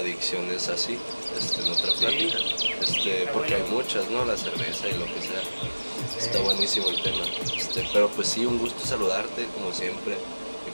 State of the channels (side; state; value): both; inverted; correlation -1.00